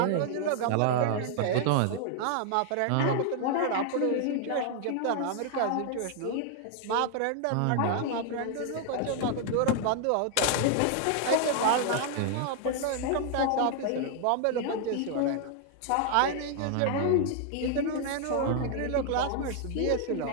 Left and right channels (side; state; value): both; different; correlation 0.00